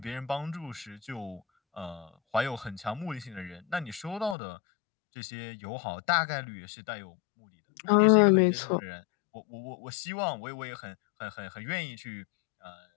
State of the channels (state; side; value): drops out; right; at 4.4 s